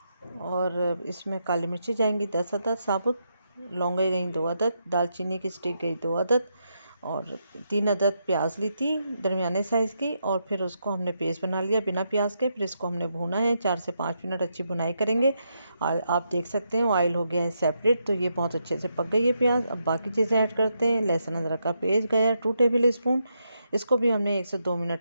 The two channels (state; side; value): inverted; both; correlation -0.81